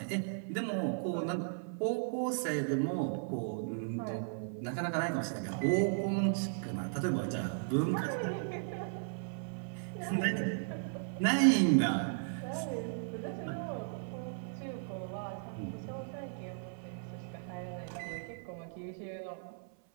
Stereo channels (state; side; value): silent; left; 54 dB below the other